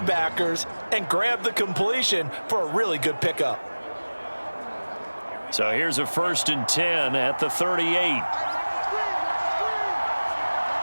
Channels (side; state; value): both; inverted; correlation -1.00